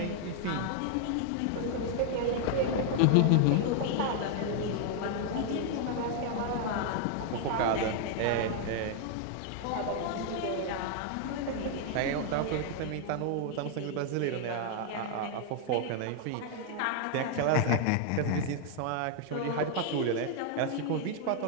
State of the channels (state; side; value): different; both; correlation 0.00